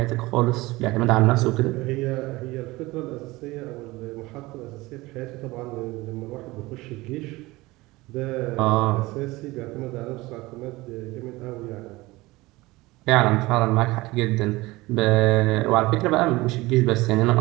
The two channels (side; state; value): left; quieter; 20.6 dB